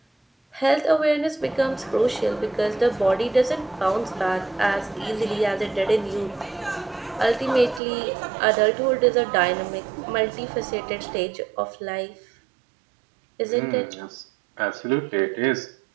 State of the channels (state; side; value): drops out; left; at 7.8 s